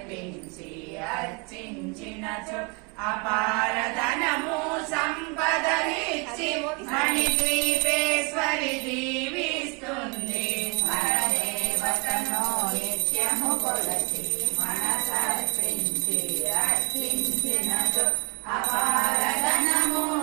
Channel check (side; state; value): left; quieter; 30.8 dB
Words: అర్చించినచో అపారధనము సంపదలిచ్చి మణిద్వీపేశ్వరి దీవిస్తుంది పరదేవతను నిత్యము కొలసి మనసర్పించి అర్చించినచో అపారధనము